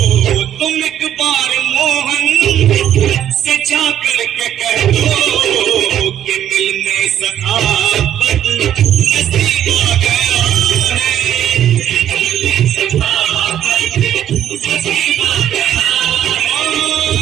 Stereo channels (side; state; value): left; quieter; 10.7 dB